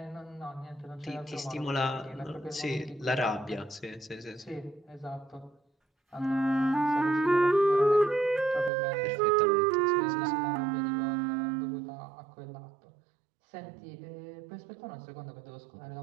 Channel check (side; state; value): left; drops out; at 8.7 s